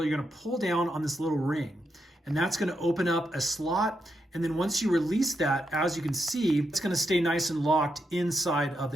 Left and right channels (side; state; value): both; normal; correlation 0.83